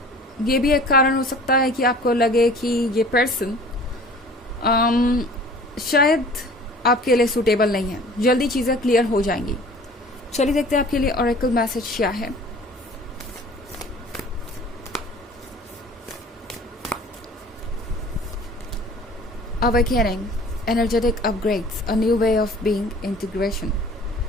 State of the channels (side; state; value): both; normal; correlation 0.47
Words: ये भी एक कारण हो सकता है कि आपको लगे कि ये पर्सन शायद आपके लिए सूटेबल नहीं है। जल्दी चीज़ें क्लियर हो जाएंगी। चलिए देखते हैं आपके लिए ऑरेकल मैसेज क्या है। Awakening, energetic upgrades, a new way of being, integration.